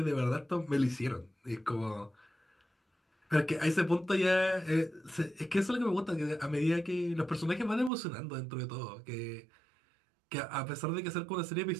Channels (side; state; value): left; drops out; at 7.9 s